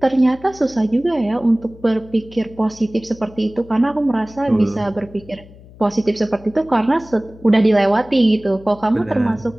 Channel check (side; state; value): left; noise; hum, 22 dB below the sound